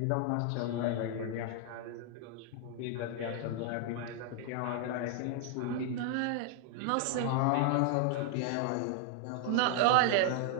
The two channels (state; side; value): different; both; correlation 0.00